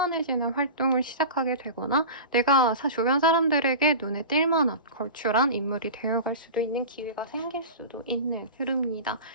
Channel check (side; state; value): both; inverted; correlation -0.32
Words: 활동을 시작하게 되거나 내가 주변 사람들에게 눈에 띌 만한 걸출한 인물이 되어갈 수도 있는 기회가 생길 수도 있는 흐름입니다.